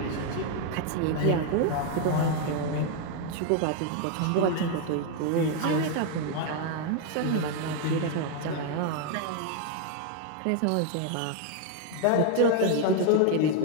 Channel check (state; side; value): different; both; correlation 0.00